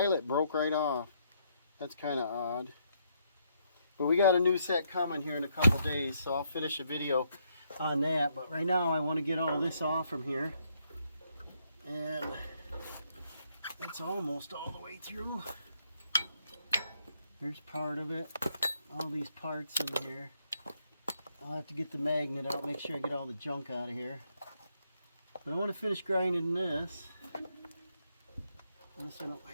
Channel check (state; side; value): inverted; both; correlation -0.75